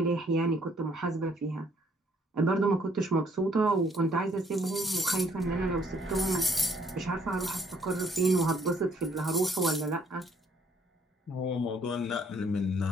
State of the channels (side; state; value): both; normal; correlation 0.65